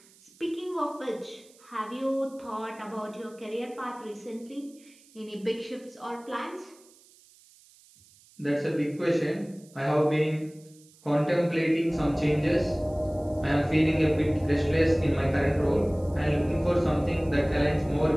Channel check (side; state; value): right; noise; hiss, 27 dB below the sound